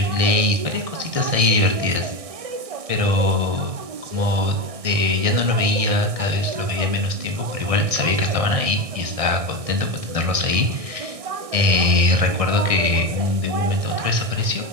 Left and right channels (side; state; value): left; late; 1.6 ms